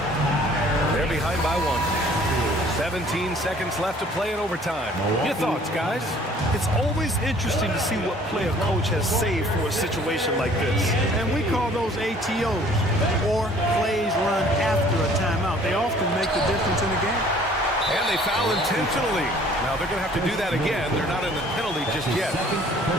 They're behind by 1. 17 seconds left to play in overtime. Your thoughts, guys? It's always interesting to see what play a coach has saved for a situation like this. And we call those ATOs, or plays run after a timeout. They often make the difference in the game. And they foul intentionally. Now they're going to have to do that again. They're not in the penalty just yet.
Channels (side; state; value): both; normal; correlation 0.55